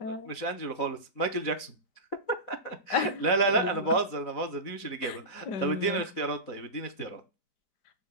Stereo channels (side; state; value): right; late; 4.1 ms